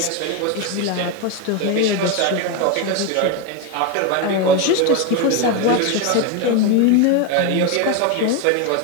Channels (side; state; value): both; different; correlation 0.02